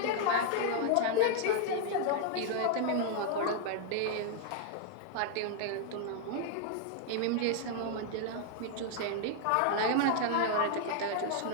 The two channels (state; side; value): different; both; correlation -0.01